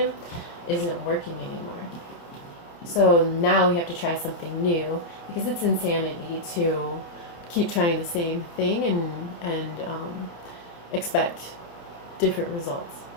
isn't working anymore. So now we have to try something new, because it's insanity to keep trying the same thing and expect different results.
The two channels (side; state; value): right; late; 30 ms